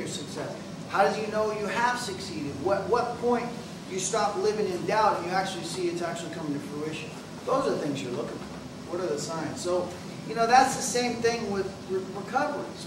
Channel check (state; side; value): identical; both; correlation 1.00